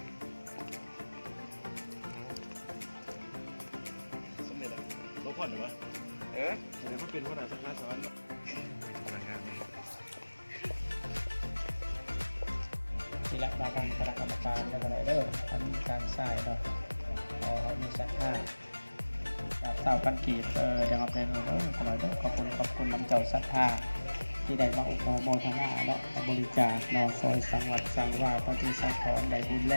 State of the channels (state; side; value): inverted; both; correlation -1.00